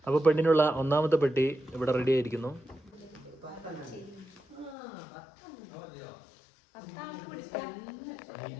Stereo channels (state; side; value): drops out; right; at 4.8 s